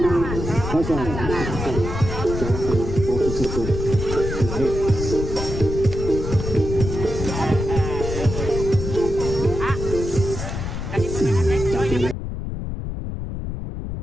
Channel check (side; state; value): left; noise; rumble, 5 dB below the sound